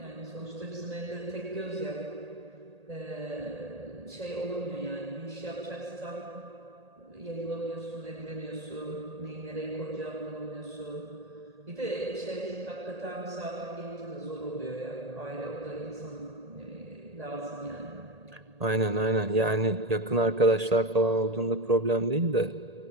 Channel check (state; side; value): late; left; 1.8 ms